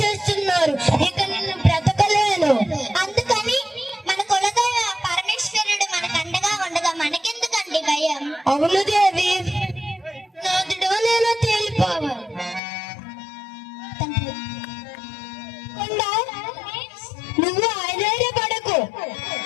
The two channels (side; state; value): right; drops out; at 12.6 s